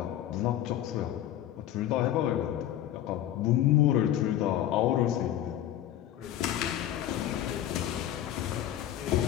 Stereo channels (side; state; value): right; quieter; 12.0 dB